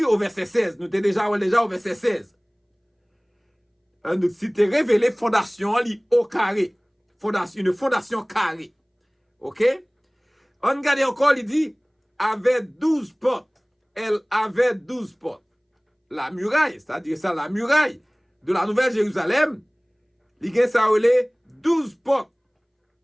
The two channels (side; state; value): both; identical; correlation 1.00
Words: au verset 16, nous étions déjà au verset 16. Une cité révélée, fondation, au carré. Une fondation carrée. Ok? On regarde encore, il dit, avait 12 portes. Elle avait 12 portes. La muraille, c'est-à-dire ça, la muraille de la Nouvelle Jérusalem, il y a ça, 12 portes.